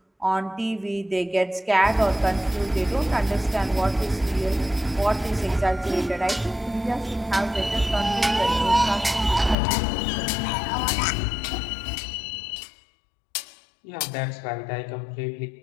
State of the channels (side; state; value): right; drops out; at 9.6 s